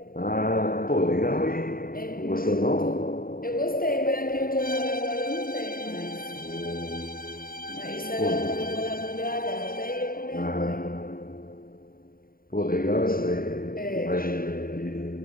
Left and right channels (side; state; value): right; late; 0.42 ms